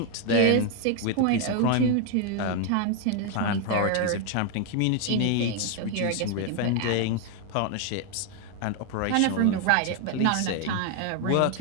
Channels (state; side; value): different; both; correlation 0.01